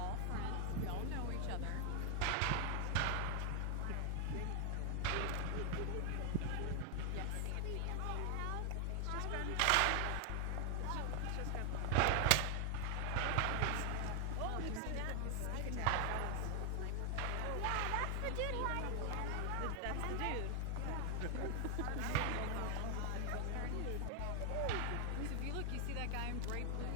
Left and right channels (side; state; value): both; different; correlation 0.00